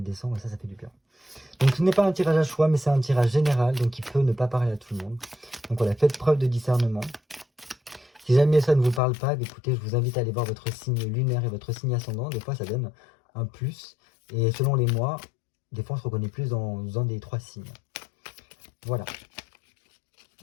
décembre. Et ça fait du bien. Donc ce n'est pas un tirage à choix, mais c'est un tirage général, donc il peut ne pas parler à tout le monde. Donc voilà, faites preuve de discernement. Si jamais ça ne vous parle pas, écoutez, je vous invite à aller voir votre signe lunaire et votre signe ascendant. Des fois, ça donne un plus. Et selon les mois, des fois, on se reconnaît plus dans un des trois signes. Voilà.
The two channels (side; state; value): right; drops out; at 9.0 s